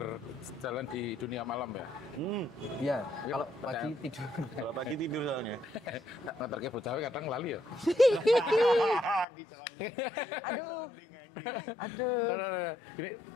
di dunia malam ya. Iya, Ya, kalau percaya. pagi tidur. Kalau pagi tidur soalnya. Ngeterke bocah kadang lali ya. Di sounding. Di sounding anjing. Aduh. Jadi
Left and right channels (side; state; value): right; drops out; at 9.2 s